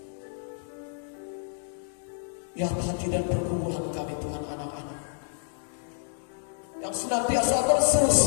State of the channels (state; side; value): silent; right; digital silence